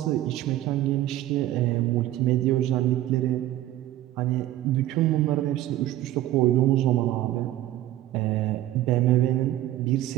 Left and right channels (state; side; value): quieter; left; 14.2 dB